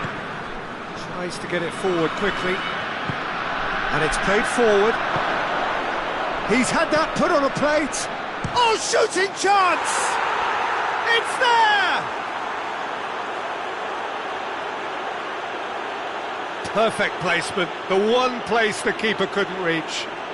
Tries to get it forward quickly. And it's played forward. He's had that put on a plate. Oh, shooting chance! It's there! Perfect placement. The one place the keeper couldn't reach.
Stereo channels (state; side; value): identical; both; correlation 1.00